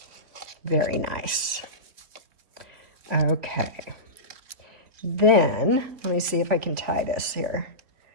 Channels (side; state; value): left; late; 3.5 ms